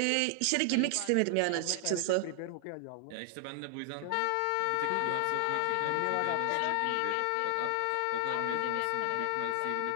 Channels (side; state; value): both; different; correlation 0.00